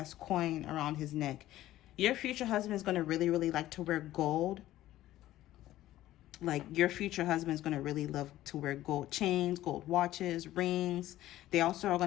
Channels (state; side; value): quieter; right; 14.6 dB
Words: coin around his neck. Your future husband is going to really, really like to wear gold. Like your future husband is going to really love to wear gold chains, gold watches, rings. They also are